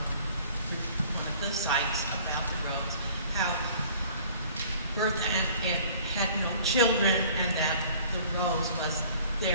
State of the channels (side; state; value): both; inverted; correlation -0.51